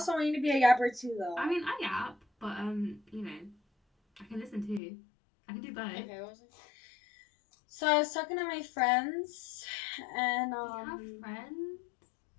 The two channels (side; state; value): right; drops out; at 4.8 s